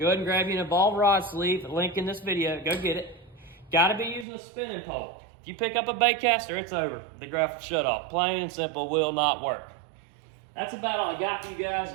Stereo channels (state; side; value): drops out; left; at 4.2 s